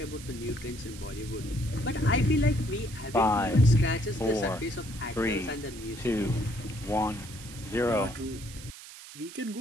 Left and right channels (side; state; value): right; noise; hiss, 15 dB below the sound